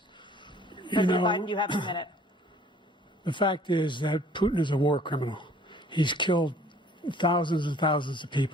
President Biden, you have a minute. The fact is that Putin is a war criminal. He's killed thousands and thousands of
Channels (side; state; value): both; normal; correlation 0.55